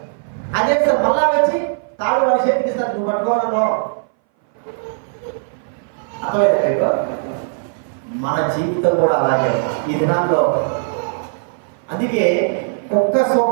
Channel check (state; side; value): silent; left; 60 dB below the other